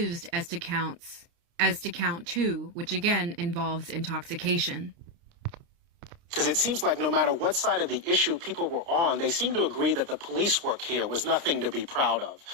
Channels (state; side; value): late; left; 29 ms